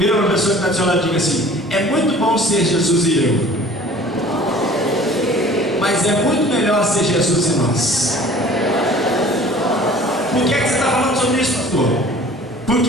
uma pessoa que está do seu lado e diga assim: é muito bom ser Jesus e eu, mas é muito melhor ser Jesus e nós. Por que você está falando sobre isso, pastor?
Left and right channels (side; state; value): both; normal; correlation 0.48